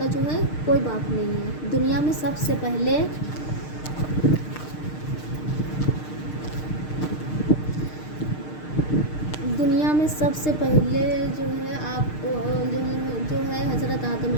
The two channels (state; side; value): late; right; 6.6 ms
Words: जो है कोई बाप नहीं है। दुनिया में सबसे पहले जो है आपको जो है हज़रत आदम